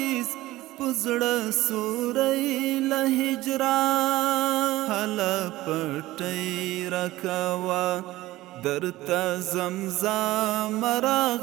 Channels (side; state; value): left; quieter; 17.2 dB